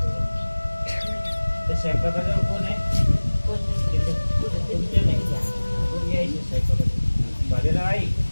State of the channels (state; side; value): inverted; both; correlation -1.00